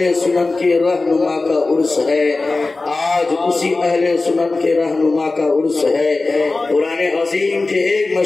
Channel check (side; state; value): right; quieter; 3.4 dB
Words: سنت کے رہنما کا عرس ہے، آج اسی اہل سنت کے رہنما کا عرس ہے۔ قرآن عظیم کے ایک